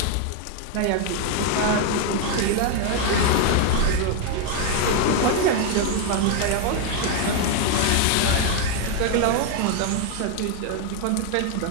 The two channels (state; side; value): different; both; correlation 0.01